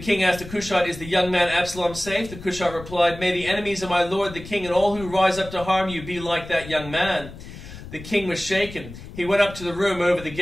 asked the Cushite, "Is the young man Absalom safe?" The Cushite replied, "May the enemies of my lord the king and all who rise up to harm you be like that young man." The king was shaken. He went up to the room over the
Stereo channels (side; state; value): left; noise; rumble, 14 dB below the sound